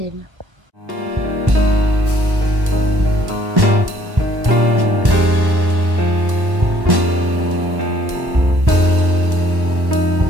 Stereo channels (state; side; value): late; left; 1.1 ms